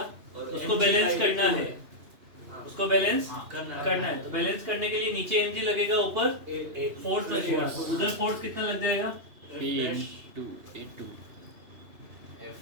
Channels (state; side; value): late; left; 2.9 ms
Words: उसको बैलेंस करना है, उसको बैलेंस करना है। तो बैलेंस करने के लिए नीचे mg लगेगा, ऊपर फोर्स लगेगा। उधर फोर्स कितना लग जाएगा?